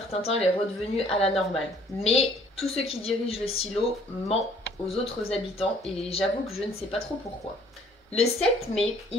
temps, elle est redevenue à la normale. Mais tous ceux qui dirigent le silo mentent aux autres habitants et j'avoue que je ne sais pas trop pourquoi. Le 7 mai,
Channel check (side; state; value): both; normal; correlation 0.58